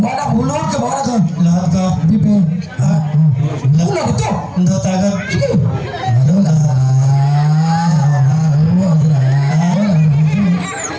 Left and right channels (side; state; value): both; identical; correlation 1.00